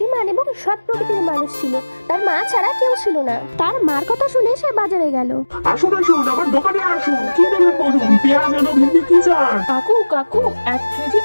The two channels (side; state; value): both; inverted; correlation -1.00